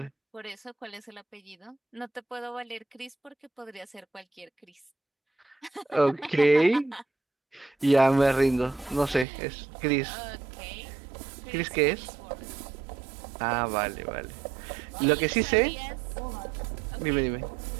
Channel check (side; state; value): left; drops out; at 9.2 s